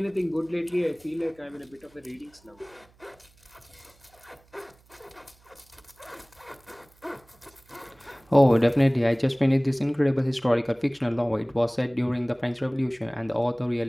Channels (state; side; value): noise; right; hum, 30 dB below the sound